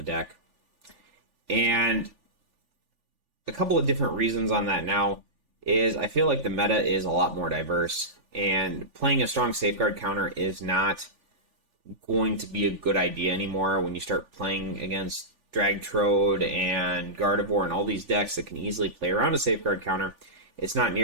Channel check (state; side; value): late; left; 3.4 ms